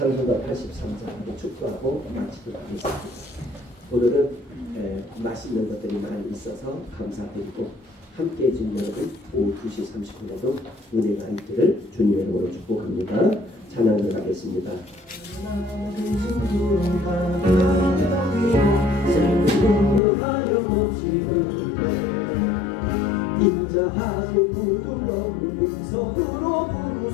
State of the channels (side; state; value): right; drops out; at 20.0 s